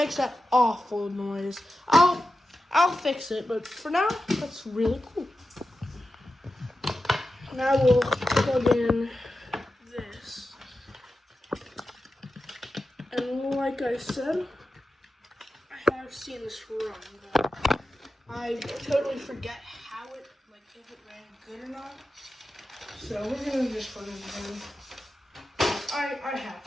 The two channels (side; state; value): both; normal; correlation 0.91